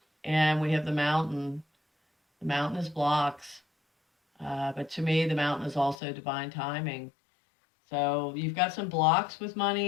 And we have the mountain. The mountain is blocks. But to me, the mountain is also divine timing. So you've got some blocks with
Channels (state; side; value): drops out; right; at 6.0 s